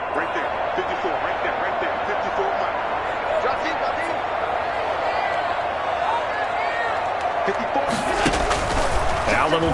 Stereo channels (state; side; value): identical; both; correlation 1.00